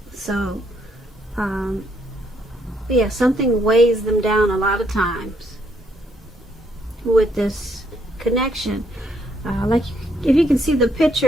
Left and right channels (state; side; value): normal; both; correlation 0.72